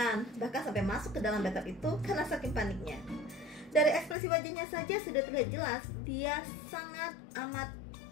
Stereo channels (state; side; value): drops out; right; at 4.2 s